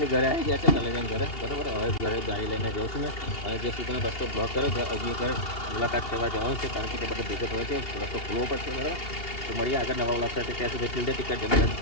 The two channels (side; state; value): right; late; 2.8 ms